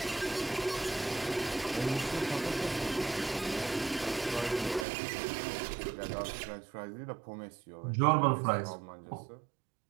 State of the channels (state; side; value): drops out; left; at 4.9 s